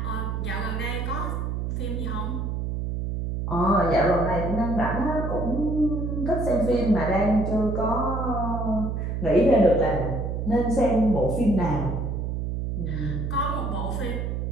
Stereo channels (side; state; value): right; noise; hum, 2 dB below the sound